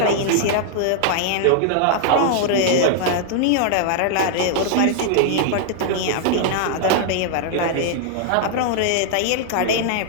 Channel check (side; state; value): both; different; correlation -0.01